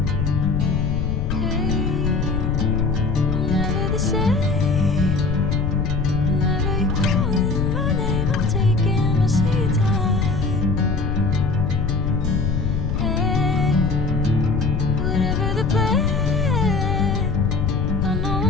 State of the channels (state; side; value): noise; left; rumble, 1 dB below the sound